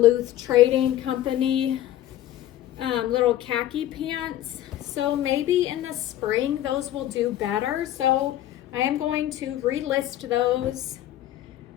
Trading Company little khaki pants. So maybe in the spring those will do better. So I am going to relist those.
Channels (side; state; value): right; quieter; 13.1 dB